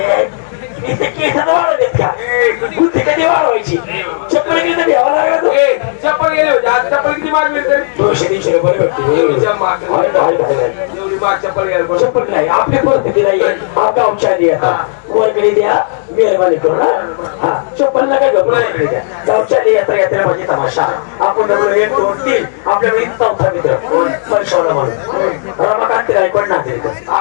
इथे केसात वाढवलेत का बुद्धी कधी वाढवायची चप्पल गेली तर घ्यावा लागला तो ए, चप्पल गेले होते आज चप्पल किती माग मिळते 200-300 रुपये भेटते एवढी माग चप्पल घ्यायला चप्पल नाही आपली परिस्थिती नाही हा गावच्या आधी येतात वर्गणी द्या मेहरबानी करू ना हा चप्पल नका घेऊ वर्गणी द्या गावच्या आधी यात्रा यात्रा माझी तमाशा आपण म्हणलो 1 2 3 आपल्याकडे चौथा मित्र पैशाला म्हणून रमाकांत गायकवाड नागरिक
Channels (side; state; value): right; silent; digital silence